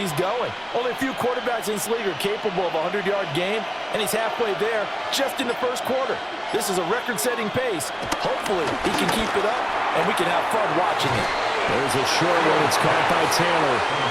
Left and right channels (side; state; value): both; identical; correlation 1.00